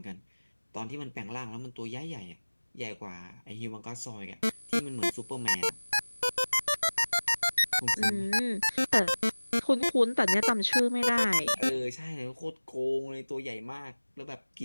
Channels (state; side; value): inverted; both; correlation -1.00